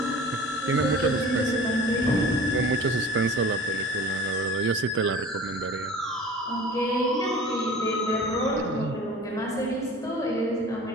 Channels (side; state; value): both; normal; correlation 0.42